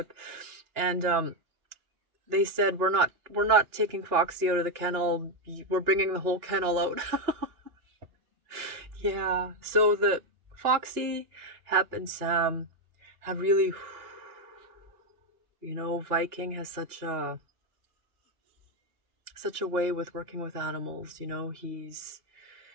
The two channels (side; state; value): left; late; 2.8 ms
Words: And they said, we're not taking Foxy out of the kennel. We're bringing the whole kennel out. Yeah. So the Foxy, Hep, and Sam have really, you know, Viking has such a way with working with animals. You know, he's